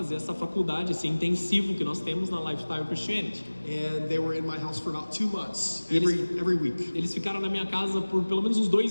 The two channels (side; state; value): both; inverted; correlation -1.00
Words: essa faculdade, esse intensivo que nós temos na Lifestyle Christianity. And they were in my house for about 2 months, every week. Eles ficaram na minha casa por pelo menos uns